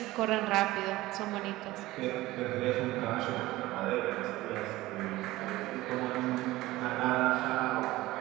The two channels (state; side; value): quieter; left; 18.0 dB